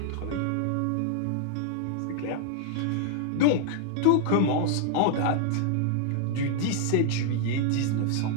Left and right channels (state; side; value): different; both; correlation 0.00